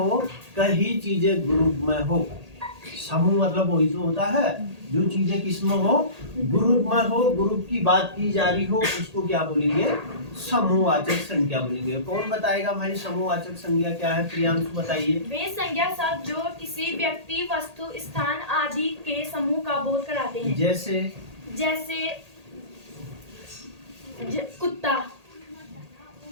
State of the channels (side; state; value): left; late; 1.8 ms